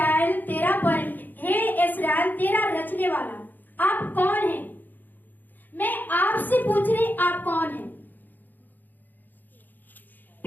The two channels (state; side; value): late; right; 0.087 ms